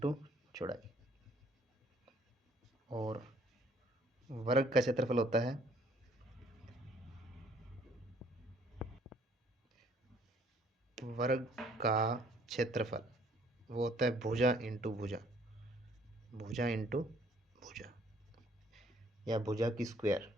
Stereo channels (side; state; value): both; normal; correlation 0.61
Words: चौड़ाई। और वर्ग का क्षेत्रफल होता है वर्ग का क्षेत्रफल, वो होता है भुजा इंटू भुजा, भुजा इंटू भुजा, या भुजा की स्क्वायर,